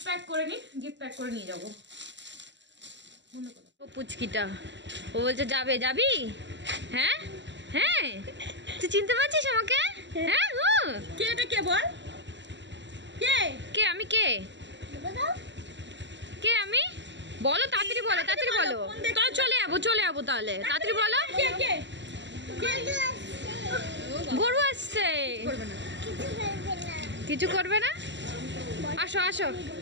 প্যাক করে নিই, গিফট প্যাক করে নিয়ে যাবো। পুচকিটা ও বলছে যাবে, যাবি? হ্যাঁ হ্যাঁ, তুই চিনতে পারছিস আমাকে? হ্যাঁ, কে এটা, কে বল, কে কে আমি, কে কে আমি, বলো তাড়াতাড়ি, বলো তাড়াতাড়ি, বলো। তো চলে যাবো তাহলে, তাড়াতাড়ি বলো। কে কে গরু আসছে, কিছু করবে না। আসো আসো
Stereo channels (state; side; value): late; left; 0.52 ms